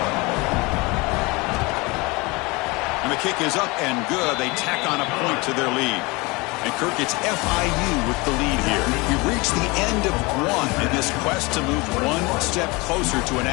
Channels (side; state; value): right; quieter; 25.2 dB